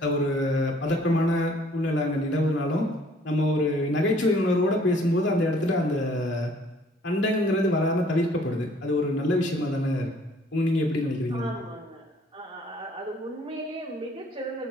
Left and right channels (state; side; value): normal; both; correlation 0.59